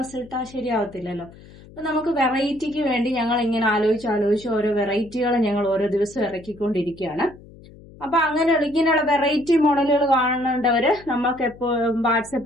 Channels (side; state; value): left; noise; hum, 21 dB below the sound